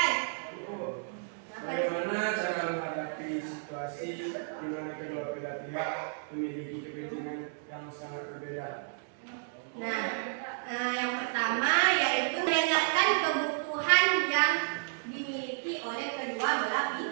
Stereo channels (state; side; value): silent; left; digital silence